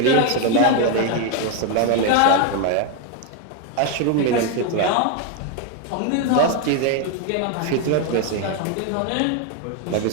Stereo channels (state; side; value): different; both; correlation 0.01